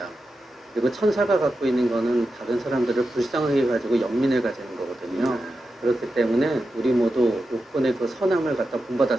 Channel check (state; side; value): normal; both; correlation 0.90